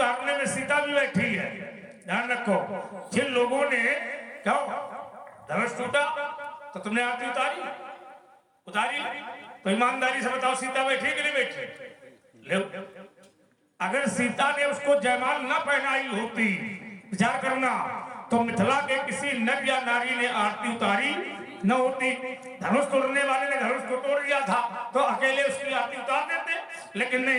में सीता भी बैठी है। ध्यान रखो, जिन लोगों ने क्या धनुष टूटा तो तुमने आरती उतारी तो ईमानदारी से बताओ सीता बैठी कि नहीं बैठी? ले, अगर सीता ने उसको जयमाल न पहनाई होती, विचार करना, तो मिथिला के किसी नर या नारी ने आरती उतारी न होती। धनुष तोड़ने वाले ने धनुष को तोड़ दिया था तो अकेले उसकी आरती उतार देते, लेकिन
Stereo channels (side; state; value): both; identical; correlation 1.00